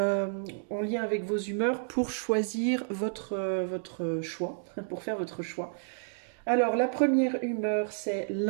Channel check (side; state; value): left; silent; digital silence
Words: lien avec vos humeurs pour choisir votre choix, pour faire votre choix. Alors la première humeur c'est